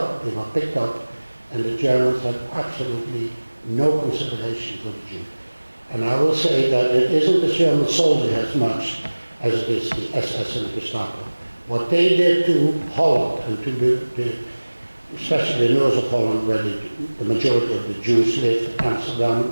they were picked up, and the Germans had absolutely no consideration for the Jews. And I will say that it isn't the German soldier as much as it is the SS and the Gestapo. What they did to Holland and to especially the north of Holland, where the majority of the Jews lived,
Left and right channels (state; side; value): inverted; both; correlation -1.00